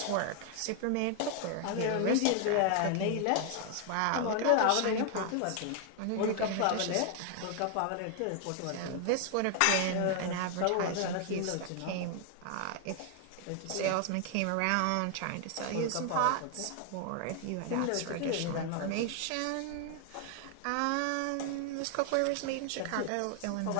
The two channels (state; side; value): different; both; correlation 0.00